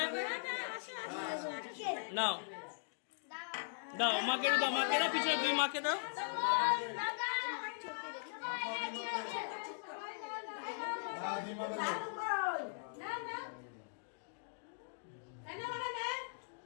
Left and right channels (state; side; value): silent; right; digital silence